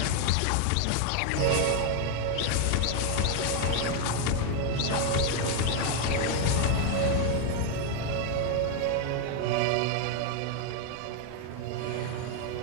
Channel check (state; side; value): different; both; correlation 0.00